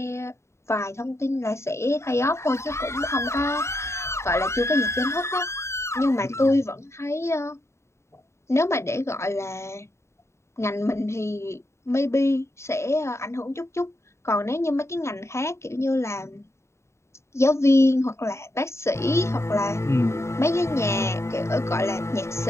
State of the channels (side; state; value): right; late; 0.13 ms